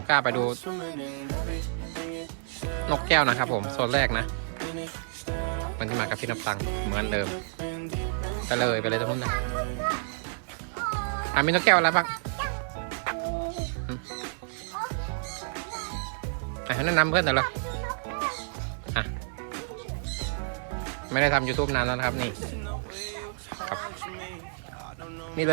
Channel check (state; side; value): silent; left; 58 dB below the other